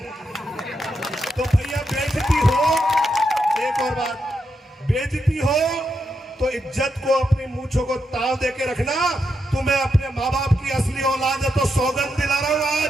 तो भैया बेइज्जती हो, एक और बात, बेइज्जती हो तो इज्जत को, अपनी मूंछों को ताव देके रखना। तुम्हें अपने माँ बाप की असली औलाद है तो सौगंध दिला रहा हूं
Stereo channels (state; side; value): normal; both; correlation 0.83